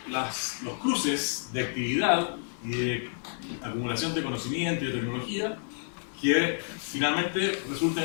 los cruces de actividad y de acumulación de conocimiento y de tecnología que finalmente resulten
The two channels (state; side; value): silent; right; 58 dB below the other